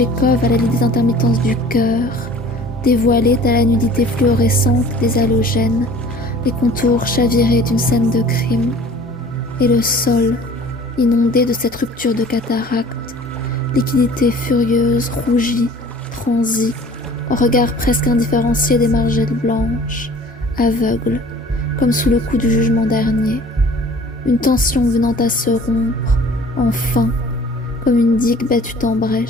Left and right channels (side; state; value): both; normal; correlation 0.48